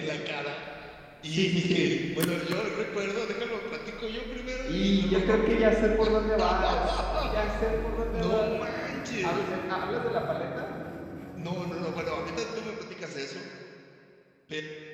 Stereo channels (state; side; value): identical; both; correlation 1.00